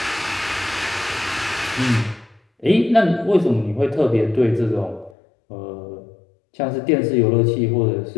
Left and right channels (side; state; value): right; drops out; at 5.2 s